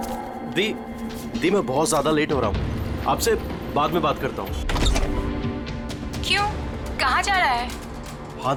मैं बहुत ज्यादा लेट हो रहा हूँ। आपसे बाद में बात करता हूँ। क्यों? कहाँ जा रहा है? हाँ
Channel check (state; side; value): identical; both; correlation 1.00